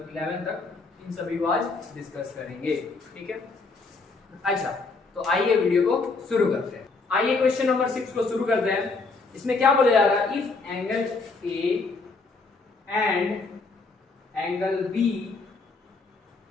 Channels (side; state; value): right; quieter; 4.0 dB